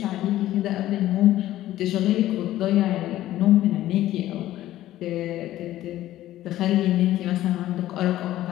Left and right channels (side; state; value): right; quieter; 14.2 dB